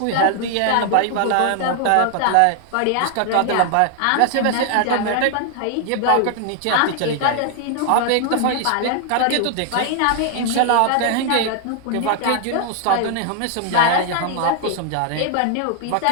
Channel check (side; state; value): both; different; correlation 0.00